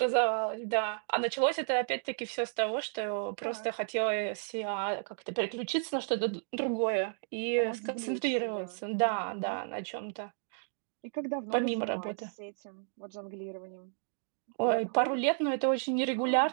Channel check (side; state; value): left; silent; digital silence